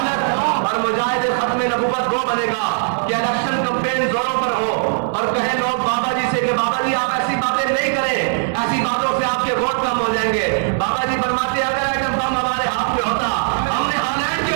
मुजाहिद ख़त्म नबूवत वो बनेगा कि इलेक्शन कैंपेन जोरों पर हो और कहे लोग बाबा जी से कि बाबा जी आप ऐसी बातें नहीं करें, ऐसी बातों से आपके वोट कम हो जाएंगे। बाबा जी फरमाते अगर एटम बम हमारे हाथ में होता हमने हालैंड के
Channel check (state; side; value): silent; left; digital silence